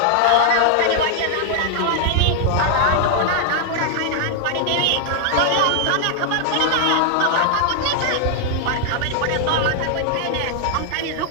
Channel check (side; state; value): both; different; correlation 0.00